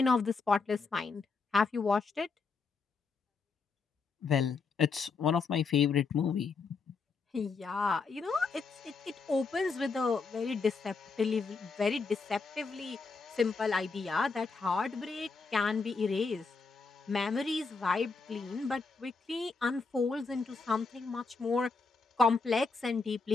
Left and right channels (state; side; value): quieter; right; 4.5 dB